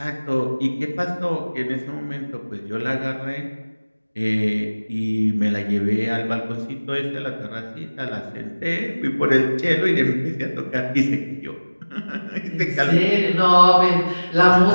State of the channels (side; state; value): both; inverted; correlation -1.00